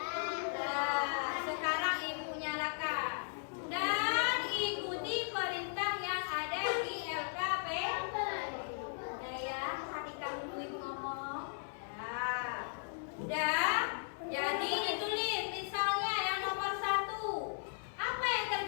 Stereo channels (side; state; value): right; silent; 53 dB below the other